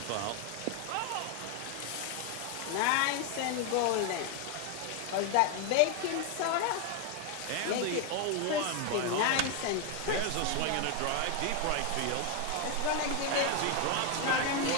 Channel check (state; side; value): different; both; correlation 0.01